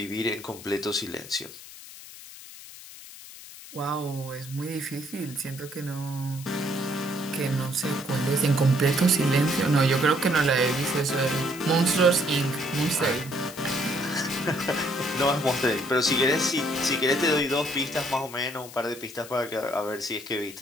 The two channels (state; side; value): noise; left; hiss, 16 dB below the sound